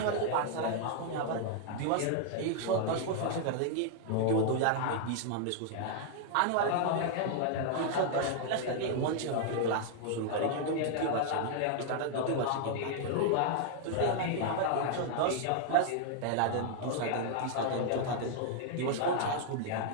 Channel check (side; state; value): both; different; correlation 0.00